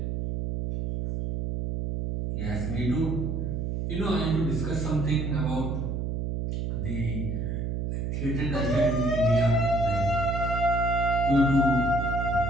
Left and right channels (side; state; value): right; noise; hum, 2 dB below the sound